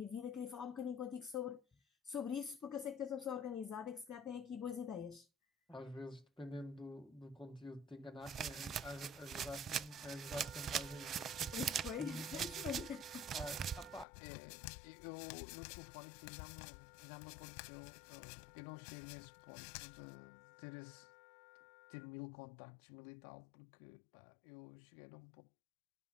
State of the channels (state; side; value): drops out; right; at 14.1 s